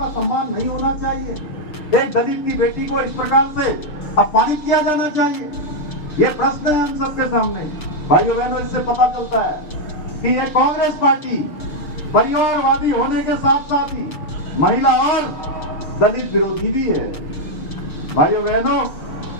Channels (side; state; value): right; late; 6.7 ms